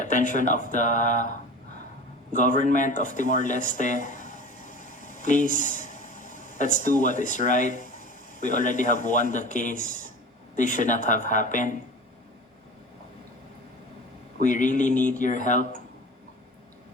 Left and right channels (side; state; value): both; normal; correlation 0.36